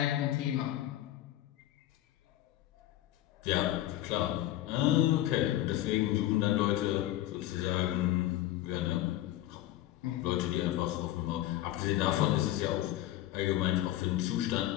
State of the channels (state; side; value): quieter; right; 14.3 dB